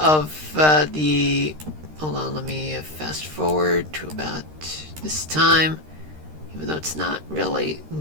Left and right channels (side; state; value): left; late; 13 ms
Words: hold on, let me fast forward to about this time, even though it's not really